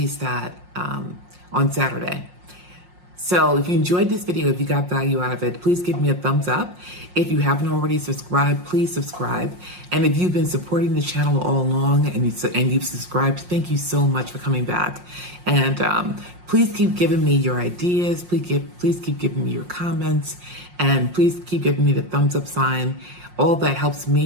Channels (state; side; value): late; left; 5.6 ms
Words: that on Saturday. So if you enjoyed this video, if you got value out of it, please give me a thumbs up. If you haven't already subscribed, please subscribe. And if you've been supporting the channel all along and you've subscribed, thank you so much for coming back. And please keep giving me your ideas. Please keep giving me your comments. And please keep giving me the thumbs up sign. All that helps